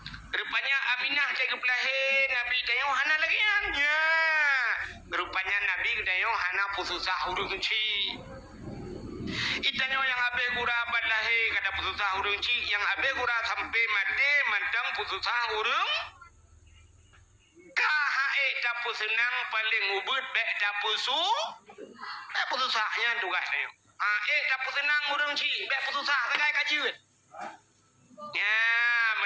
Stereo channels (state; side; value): identical; both; correlation 1.00